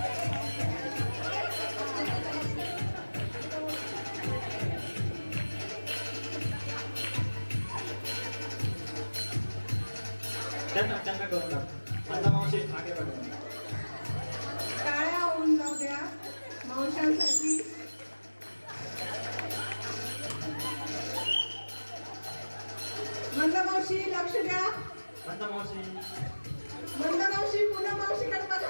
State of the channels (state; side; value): inverted; both; correlation -1.00